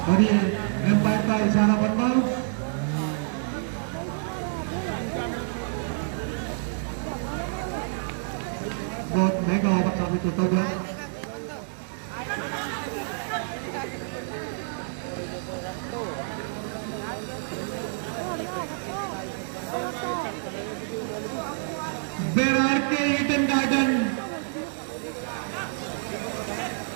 और ये एम्पायर का इशारा बनना। बहुत महंगा ऑर्डर साबित होता गया। बेरार के ईडन गार्डन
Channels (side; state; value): left; silent; digital silence